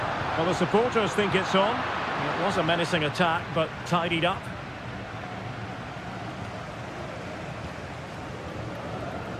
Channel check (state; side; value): identical; both; correlation 1.00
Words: Well, the supporters think it's on. It was a menacing attack, but tidied up.